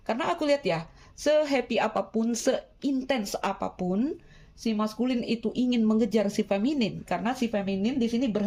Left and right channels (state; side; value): identical; both; correlation 1.00